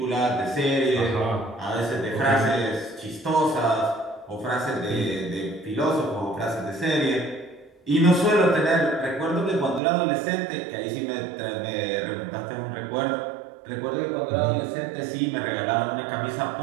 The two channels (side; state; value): left; drops out; at 9.8 s